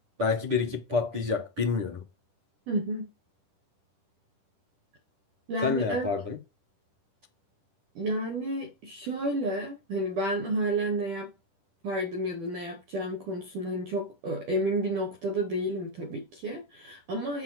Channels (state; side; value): late; left; 10 ms